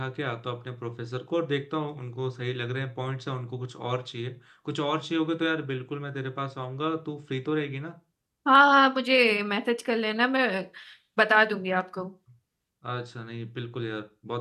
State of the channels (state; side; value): identical; both; correlation 1.00